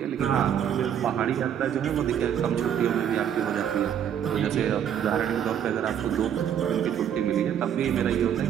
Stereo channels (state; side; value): quieter; left; 9.2 dB